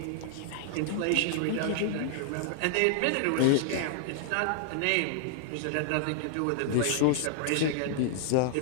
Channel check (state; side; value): different; both; correlation -0.01